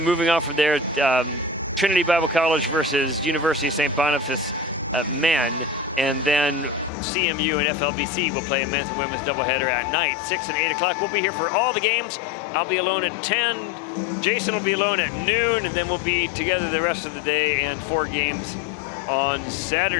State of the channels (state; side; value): drops out; right; at 6.9 s